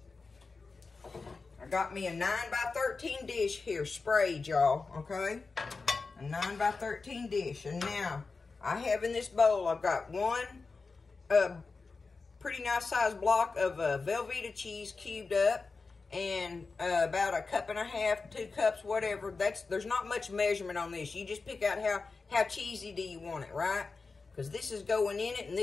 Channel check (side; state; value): right; quieter; 4.2 dB